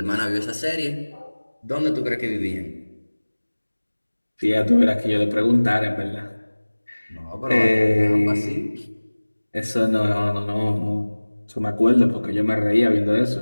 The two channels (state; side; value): inverted; both; correlation -1.00